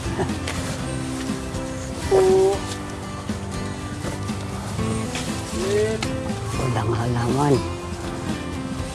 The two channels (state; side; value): identical; both; correlation 1.00